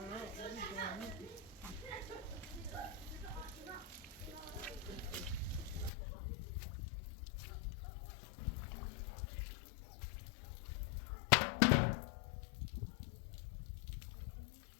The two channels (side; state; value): right; drops out; at 5.9 s